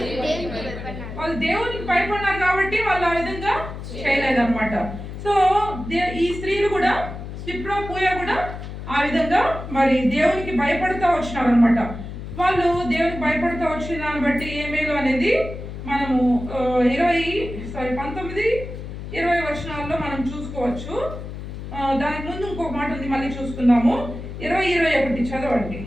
వాళ్ళు దేవునికి భయపడినారు కాబట్టి వాళ్ళు ఆ విధంగా చేయలేదన్నమాట. సో ఈ స్త్రీలు కూడా, సిప్రా, పూయ కూడా ఆ విధంగా మరి దేవునికి భయపడుతూ వచ్చినారు అనమాట. వాళ్ళు దేవునికి భయపడుతూ వచ్చిన దాన్ని బట్టి ఏ మేలు అనేది మనము 19-20 వచనాల్లో మనం చూసుకోవచ్చు. దానికి ముందు ఇంకొక మాట ఉంది, మళ్ళీ చూసుకుందాము. 20-21 చదవండి.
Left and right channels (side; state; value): left; noise; hum, 9 dB below the sound